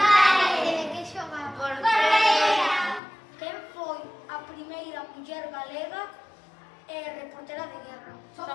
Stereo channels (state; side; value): drops out; right; at 3.0 s